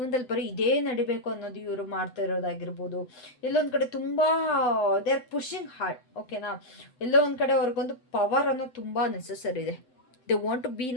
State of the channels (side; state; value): right; late; 7.9 ms